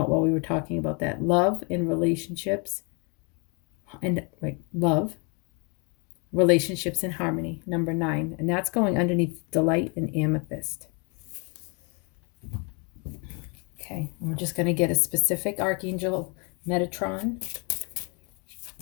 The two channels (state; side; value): quieter; right; 33.8 dB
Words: while we were talking about that. Love and relationships, and like love, relationships and harmony, number 9. And that's going underneath Delight and Amethyst. Okay, and we're just going to get a specific Archangel Metatron